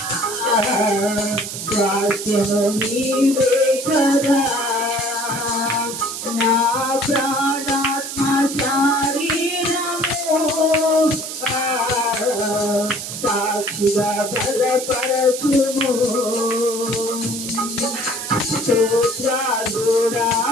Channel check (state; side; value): noise; right; hiss, 7 dB below the sound